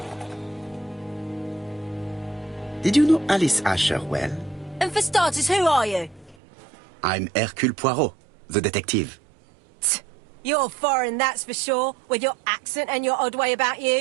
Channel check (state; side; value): drops out; left; at 6.4 s